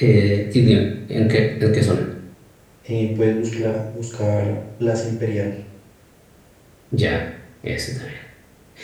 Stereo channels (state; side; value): identical; both; correlation 1.00